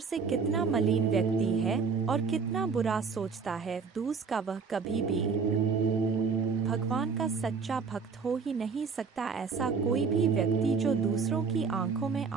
कितना मलिन व्यक्ति है और कितना बुरा सोचता है। दूसरा, वह कभी भी भगवान का सच्चा भक्त हो ही नहीं सकता। ऐसा कोई भी व्यक्ति जो दूसरों की आंखों में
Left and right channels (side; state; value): left; quieter; 5.3 dB